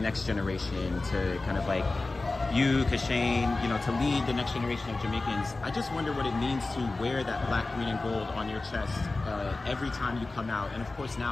generation to kind of like you, Kashane, to lead the next generation of Jamaicans. I just wonder what it means to wear that black, green, and gold on your chest every time you come out, and of course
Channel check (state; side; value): quieter; right; 3.3 dB